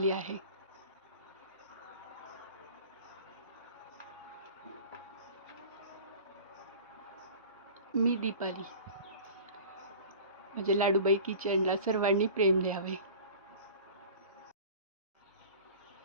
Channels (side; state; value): both; inverted; correlation -0.40